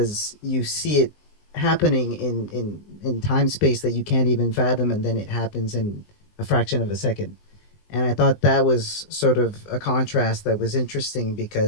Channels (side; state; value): right; late; 20 ms